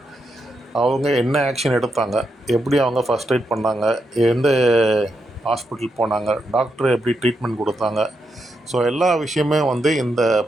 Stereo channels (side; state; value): both; normal; correlation 0.83